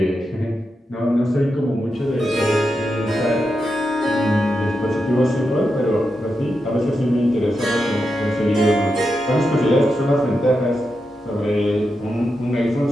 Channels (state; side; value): normal; both; correlation 0.87